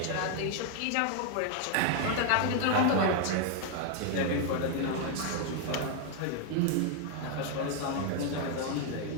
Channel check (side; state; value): both; different; correlation 0.00